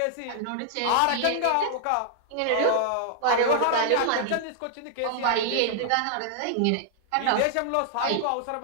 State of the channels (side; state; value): both; different; correlation 0.00